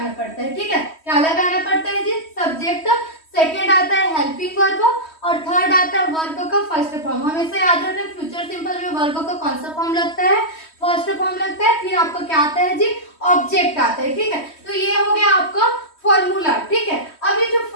पड़ता है। ठीक है, क्या लगाना पड़ता है जी? सब्जेक्ट। सेकेंड आता है हेल्पिंग वर्ब, और थर्ड आता है वर्ब का फर्स्ट फॉर्म। हमेशा याद रखना फ्यूचर सिंपल में वर्ब का कौन सा फॉर्म लगता है? फर्स्ट फॉर्म लगता है। फिर आपका क्या आता है जी? ऑब्जेक्ट आता है। ठीक है, तो ये हो गया आपका फॉर्मूला। ठीक है, अब ये जो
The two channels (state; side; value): late; right; 3.1 ms